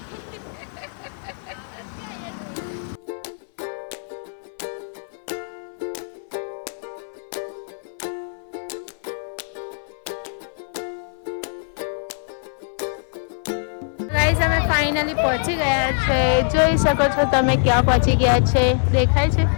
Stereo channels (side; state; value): right; silent; 61 dB below the other